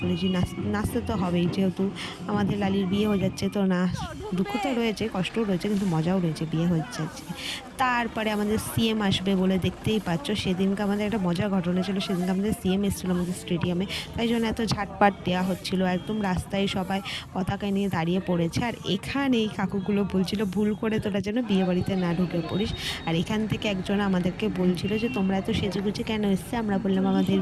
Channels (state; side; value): identical; both; correlation 1.00